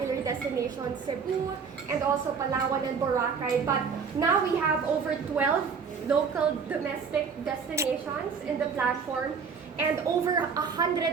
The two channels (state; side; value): quieter; left; 5.9 dB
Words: destinations, Cebu, and also Palawan and Boracay. But now we have over 12 local domestic destinations in the platform and over